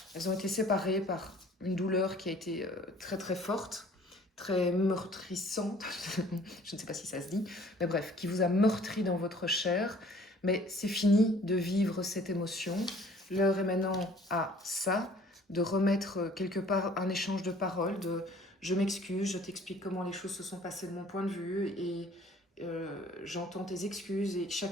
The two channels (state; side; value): normal; both; correlation 0.54